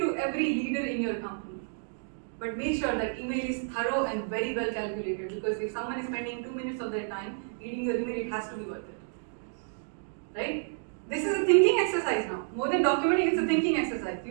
every leader in your company. But make sure that email is thorough and very well calculated, because if someone is spending 2 minutes of their time reading your email, it has to be worth it. Right? This is a thinking exercise now. More than documenting, it's a thinking exercise. You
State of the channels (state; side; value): silent; left; digital silence